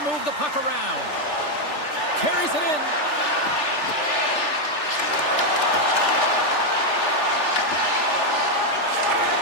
move the puck around. Carries it in.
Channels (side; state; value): right; late; 3.4 ms